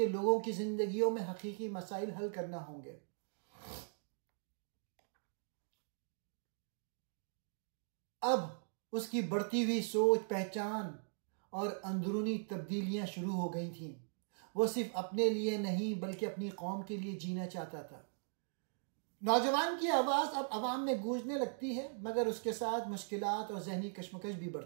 लोगों की जिंदगियों में हकीकी मसाइल हल करना होंगे। अब उसकी बढ़ती हुई सोच, पहचान और अंदरूनी तब्दीलियां शुरू हो गई थीं। वो सिर्फ अपने लिए नहीं बल्कि अपनी कौम के लिए जीना चाहता था। नौजवान की आवाज अब अवाम में गूंजने लगती है मगर उसके साथ मुश्किलात और जहनी कश्मकश भी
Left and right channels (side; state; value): left; silent; digital silence